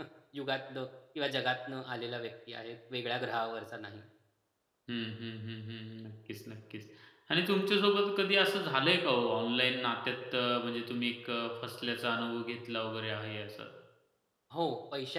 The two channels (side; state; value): both; identical; correlation 1.00